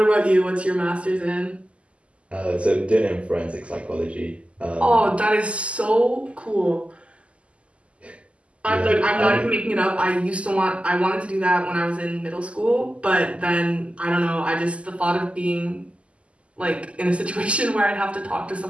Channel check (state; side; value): late; left; 0.058 ms